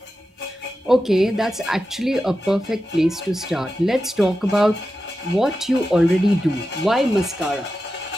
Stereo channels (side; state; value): both; normal; correlation 0.91